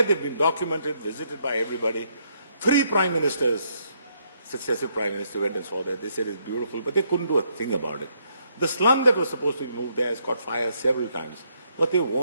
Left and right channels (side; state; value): both; inverted; correlation -0.73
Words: they've been documented, visited by everybody. 3 prime ministers, successive prime ministers went and saw that. They said it's beautiful, but they couldn't do a thing about it. The slum that was supposed to be moved there has caught fire several times, but they